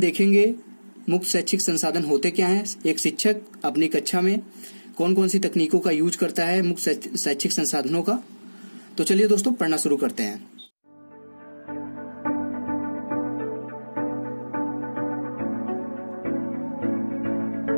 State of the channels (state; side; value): inverted; both; correlation -1.00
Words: मुक्त शैक्षिक संसाधन होते क्या हैं, एक शिक्षक अपनी कक्षा में कौन कौन सी तकनीकों का यूज करता है मुक्त शैक्षिक संसाधनों का। तो चलिए दोस्तों, पढ़ना शुरू करते हैं।